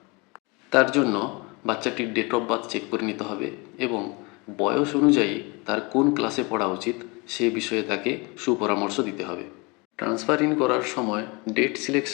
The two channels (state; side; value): quieter; right; 27.7 dB